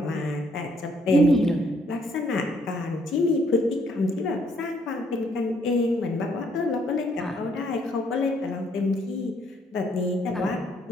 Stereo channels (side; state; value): both; normal; correlation 0.68